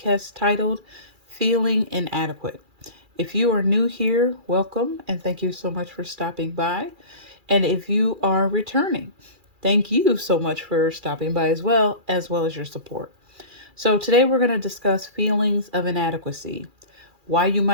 titled Feeling Inadequate. If you are new here, welcome, and thank you so much for stopping by. And if you are returning, thank you so much for stopping by as well as your support. So today we're going to discuss feelings of inadequacy, why you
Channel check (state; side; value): late; left; 2.4 ms